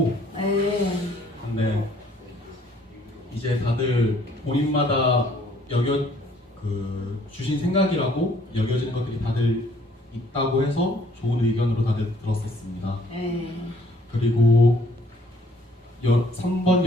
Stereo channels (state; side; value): normal; both; correlation 0.62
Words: 근데 이제 다들 본인마다 주신 생각이라고 여겨지는 것들이 다들 있다고 해서 좋은 의견으로 다들 들었었습니다. 그리고 3번